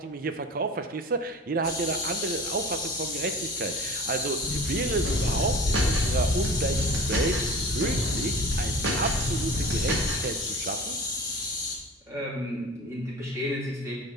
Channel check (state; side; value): normal; both; correlation 0.38